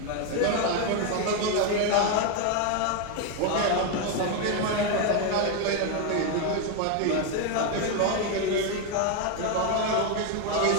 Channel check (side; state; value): both; different; correlation 0.01